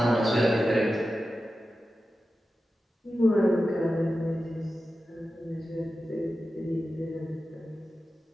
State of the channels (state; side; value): normal; both; correlation 0.93